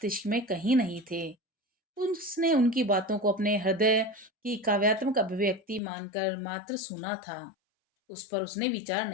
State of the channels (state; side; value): drops out; right; at 5.8 s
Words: में कहीं नहीं थे। उसने उनकी बातों को अपने हृदय की काव्यात्मक अभिव्यक्ति मानकर मात्र सुना था, उस पर उसने विचार